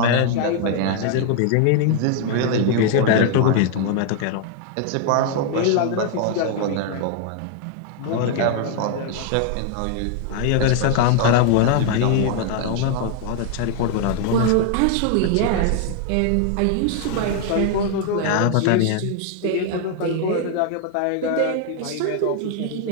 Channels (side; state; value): both; different; correlation 0.00